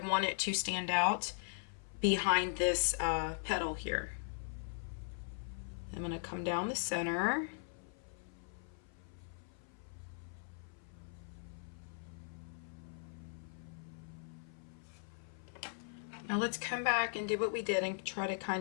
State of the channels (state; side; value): silent; right; 51 dB below the other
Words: it to stand out behind this petal here. I'm going to come down the center. Now let's come back and do what we did and try to